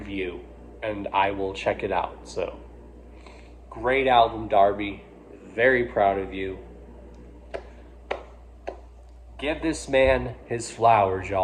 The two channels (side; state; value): both; identical; correlation 1.00